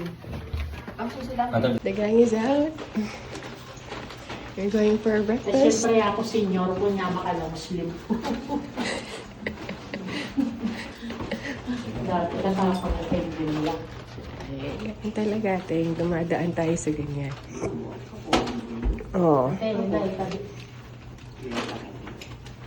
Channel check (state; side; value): identical; both; correlation 1.00